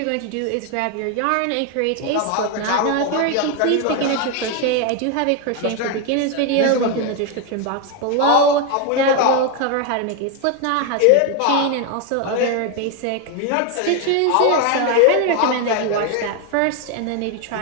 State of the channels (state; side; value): different; both; correlation 0.01